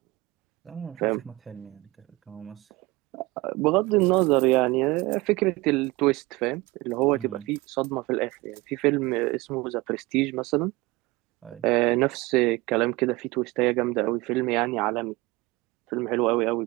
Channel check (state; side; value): quieter; left; 21.9 dB